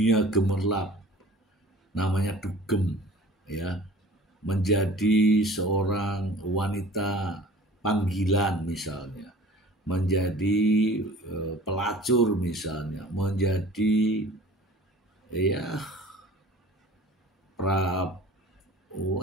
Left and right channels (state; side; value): normal; both; correlation 0.45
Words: gemerlap, namanya dugem, ya, menjadi seorang wanita panggilan misalnya, menjadi pelacur misalnya, menjadi